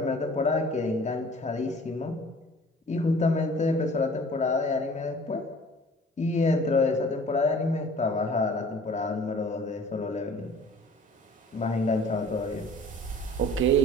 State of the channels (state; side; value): normal; both; correlation 0.48